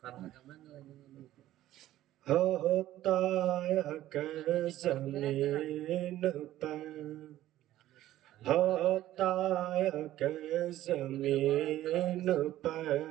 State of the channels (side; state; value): left; quieter; 14.1 dB